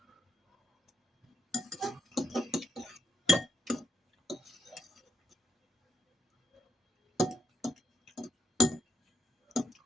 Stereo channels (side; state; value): both; normal; correlation 0.76